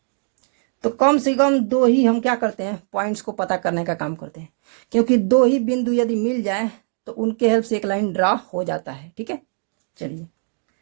तो कम से कम 2 ही हम क्या करते हैं, पॉइंट्स को पता करने का काम करते हैं, क्योंकि 2 ही बिंदु यदि मिल जाए तो उनके हेल्प से एक लाइन ड्रा हो जाता है। ठीक है, चलिए,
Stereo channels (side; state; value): left; silent; 60 dB below the other